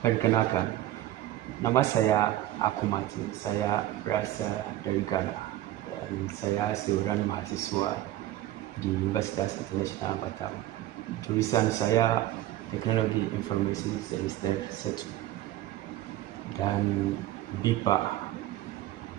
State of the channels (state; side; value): quieter; left; 14.4 dB